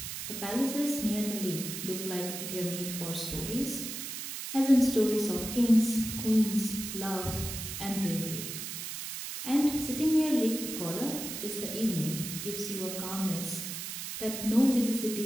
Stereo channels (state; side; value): noise; right; hiss, 6 dB below the sound